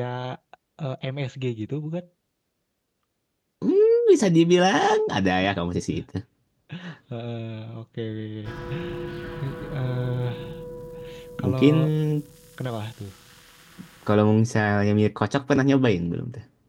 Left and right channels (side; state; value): both; identical; correlation 1.00